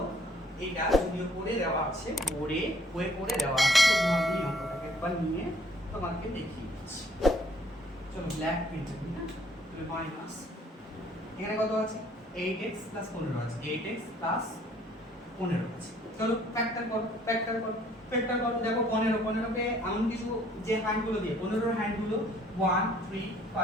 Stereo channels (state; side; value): normal; both; correlation 0.61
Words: এটা, যদিও করে দেওয়া আছে, করে দেওয়া আছে, তো আমি অঙ্কটাকে একবার নিয়ে তোমাকে দেখিয়ে দিচ্ছি। চলো ব্ল্যাক প্রিন্ট করি। হ্যাঁ তাহলে মাইনাস এখানে কত আছে, 8x + 15 আছে, 8x + 15 আছে। চলো ফ্যাক্টর করো, দেখো 15 কে এমন কিছু যে হ্যান্ডগুলো দিয়ে 15 এর হ্যান্ডগুলো 1 3